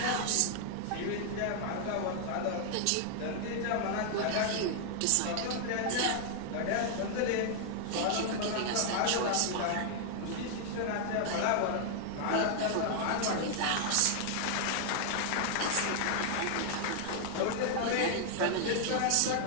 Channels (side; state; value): both; different; correlation 0.00